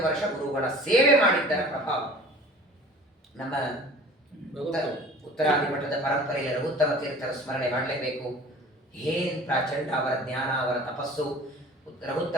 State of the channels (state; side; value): normal; both; correlation 0.45